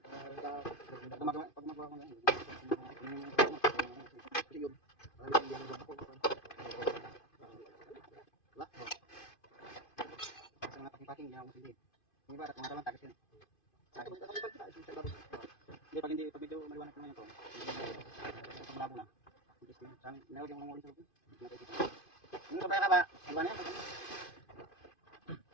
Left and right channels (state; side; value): late; right; 2.5 ms